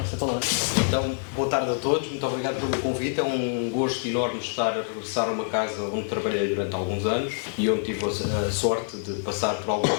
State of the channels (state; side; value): silent; right; 61 dB below the other